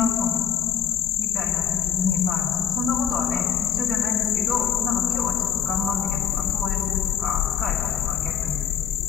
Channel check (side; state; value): right; quieter; 8.7 dB